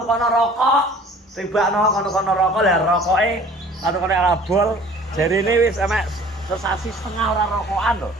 rokok. Tibakno kono rokok lah rokoke kono abol. Jarine wis emek sesasi setengah ora rokokan lho.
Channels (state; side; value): normal; both; correlation 0.49